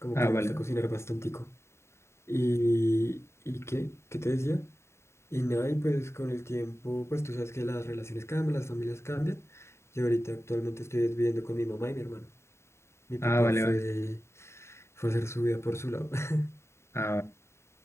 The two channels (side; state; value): right; late; 0.13 ms